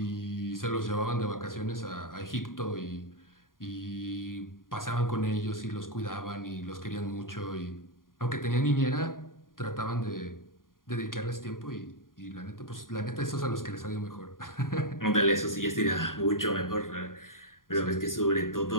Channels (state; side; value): late; right; 0.90 ms